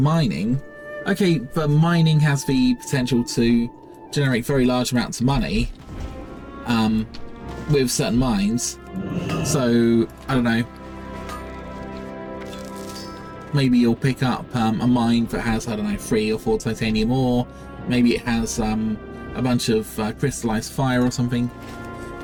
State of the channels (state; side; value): identical; both; correlation 1.00